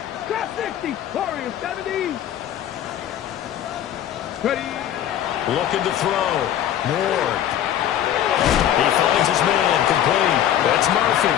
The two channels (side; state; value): right; quieter; 11.0 dB